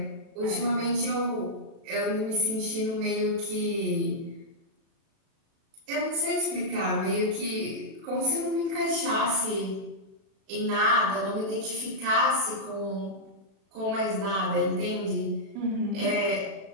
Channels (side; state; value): left; late; 36 ms